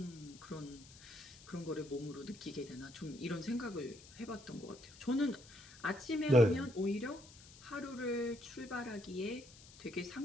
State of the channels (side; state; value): left; noise; hiss, 20 dB below the sound